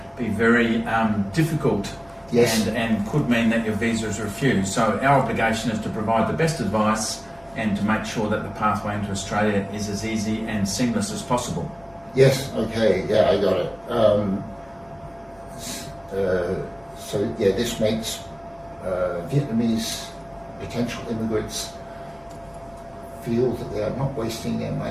be very difficult. Yes. And could mean that your visa is refused. So our obligation is to provide the best advice and to make sure that the pathway into Australia is as easy and seamless as possible. Yes, okay, yeah, I got it. So yeah, this makes Vietnamese potential immigrants feel that they are not wasting their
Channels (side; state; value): left; noise; rumble, 30 dB below the sound